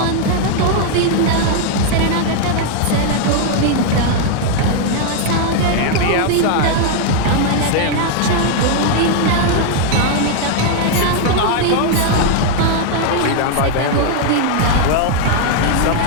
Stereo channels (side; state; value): both; different; correlation 0.00